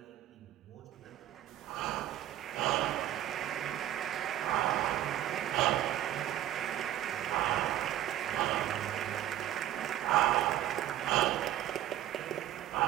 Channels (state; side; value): quieter; left; 12.3 dB